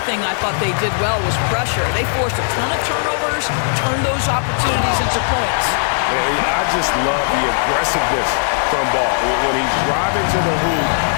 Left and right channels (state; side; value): silent; right; 68 dB below the other